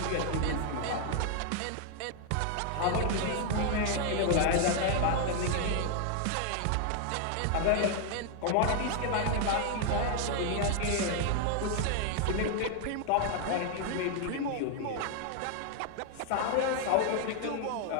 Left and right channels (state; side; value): different; both; correlation 0.00